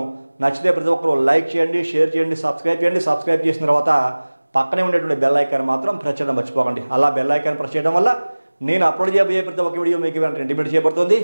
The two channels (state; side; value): inverted; both; correlation -1.00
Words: నచ్చితే ప్రతి ఒక్కరు లైక్ చేయండి, షేర్ చేయండి, సబ్స్క్రైబ్ చేయండి. సబ్స్క్రైబ్ చేసిన తర్వాత పక్కనే ఉండేటువంటి బెల్ ఐకాన్ మాత్రం ప్రెస్ చేయడం మర్చిపోకండి. అలా బెల్ ఐకాన్ ప్రెస్ చేయడం వల్ల నేను అప్లోడ్ చేయబోయే ప్రతి ఒక్క వీడియో మీకు ఇంటిమేట్